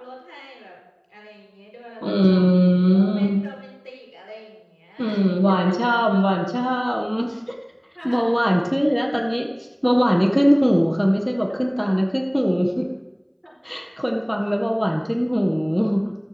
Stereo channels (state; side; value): identical; both; correlation 1.00